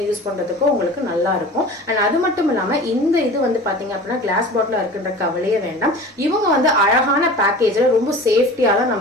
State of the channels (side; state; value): both; normal; correlation 0.38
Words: யூஸ் பண்றதுக்கோ உங்களுக்கு நல்லா இருக்கும். அண்ட் அது மட்டும் இல்லாம இந்த இது வந்து பாத்தீங்க அப்படின்னா கிளாஸ் பாட்டில் இருக்குன்ற கவலையே வேண்டாம். இவங்க வந்து அழகான பேக்கேஜ்ல ரொம்ப சேஃப்டியா தான்